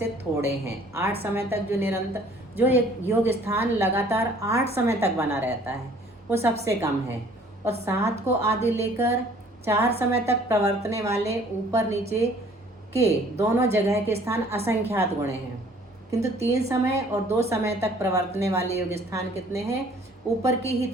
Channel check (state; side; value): normal; both; correlation 0.56